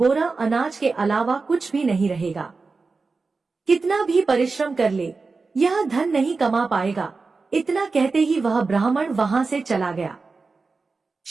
अनाज के अलावा कुछ भी नहीं रहेगा। कितना भी परिश्रम कर ले, यह धन नहीं कमा पाएगा। इतना कहते ही वह ब्राह्मण वहां से चला गया।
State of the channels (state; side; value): quieter; left; 4.2 dB